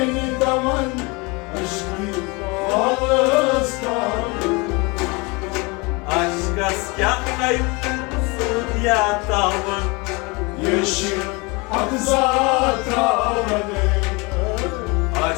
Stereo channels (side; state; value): right; quieter; 27.4 dB